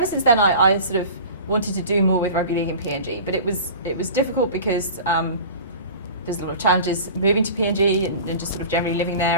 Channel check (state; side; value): inverted; both; correlation -0.38